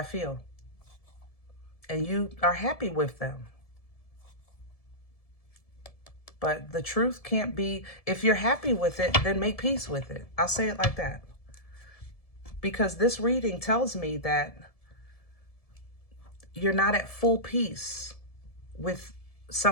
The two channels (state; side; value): late; right; 1.7 ms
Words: feel. And you are happy with them. But the truth can't be, if you're happy with it, then make peace with it. I'll say it like that. Because this reading tells me that you're not at full peace with